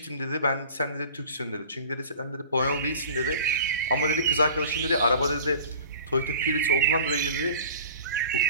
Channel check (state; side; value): inverted; both; correlation -0.43